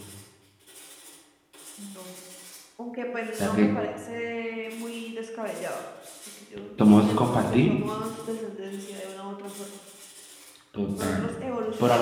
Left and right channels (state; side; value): identical; both; correlation 1.00